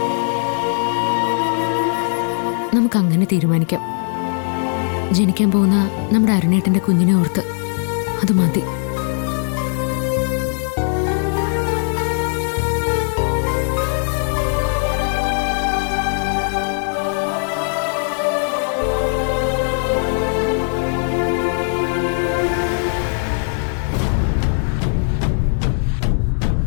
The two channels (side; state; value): right; silent; 56 dB below the other